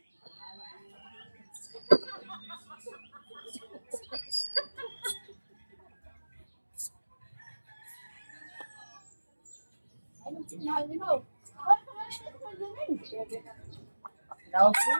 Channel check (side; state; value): both; inverted; correlation -1.00